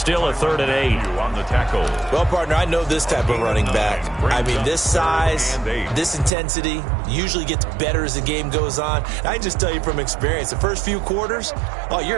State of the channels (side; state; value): left; drops out; at 6.3 s